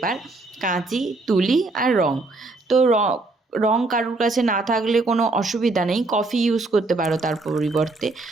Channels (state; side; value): quieter; left; 3.2 dB